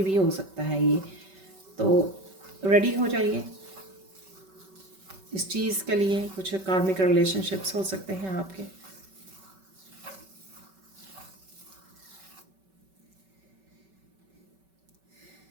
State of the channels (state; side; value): late; left; 5.3 ms